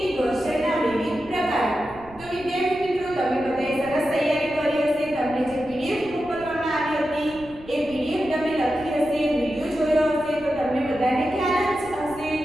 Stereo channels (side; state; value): right; noise; rumble, 21 dB below the sound